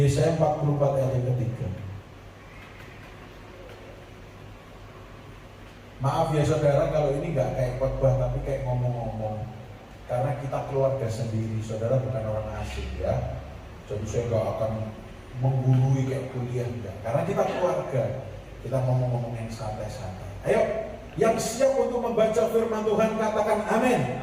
44 ayat yang ketiga. Maaf ya saudara kalau ini nggak kayak khotbah tapi kayak ngomong-ngomong. Karena kita keluarga sendiri, saudara bukan orang asing ya. Jadi saya nggak akan menggurui kayak kuliah enggak. Karena kita keluarga, kita ngomong-ngomong yang santai-santai. Ayo, yang siap untuk membaca firman Tuhan katakan amin.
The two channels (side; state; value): both; identical; correlation 1.00